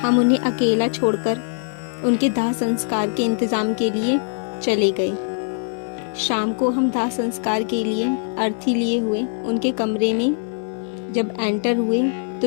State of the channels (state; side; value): silent; right; 59 dB below the other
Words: उन्हें अकेला छोड़कर उनके दाह संस्कार के इंतज़ाम के लिए चले गए। शाम को हम दाह संस्कार के लिए अर्थी लिए हुए उनके कमरे में जब एंटर हुए तो